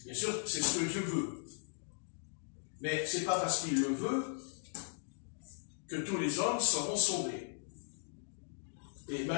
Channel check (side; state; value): right; silent; digital silence